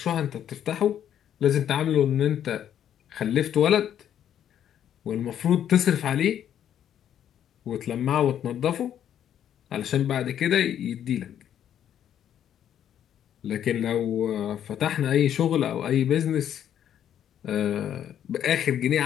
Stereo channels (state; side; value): quieter; right; 10.0 dB